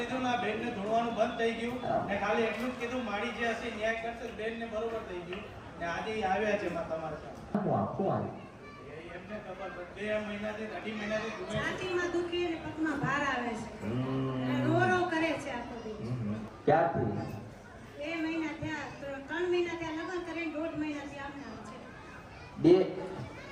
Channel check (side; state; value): both; identical; correlation 1.00